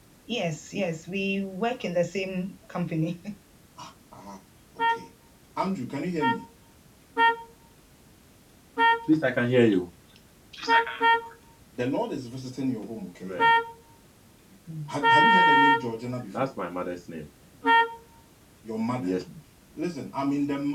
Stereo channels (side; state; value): both; identical; correlation 1.00